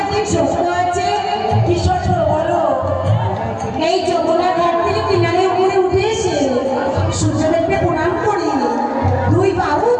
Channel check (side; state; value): both; identical; correlation 1.00